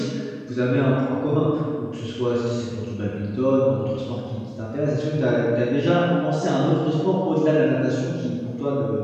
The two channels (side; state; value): both; identical; correlation 1.00